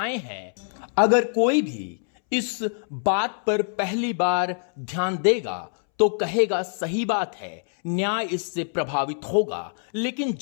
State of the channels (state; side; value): silent; right; 62 dB below the other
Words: हैं। अगर कोई भी इस बात पर पहली बार ध्यान देगा तो कहेगा सही बात है, न्याय इससे प्रभावित होगा। लेकिन